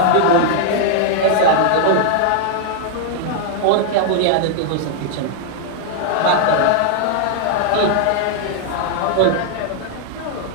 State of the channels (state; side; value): different; both; correlation 0.00